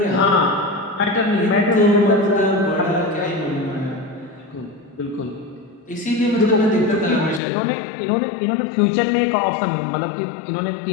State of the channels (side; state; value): right; drops out; at 7.4 s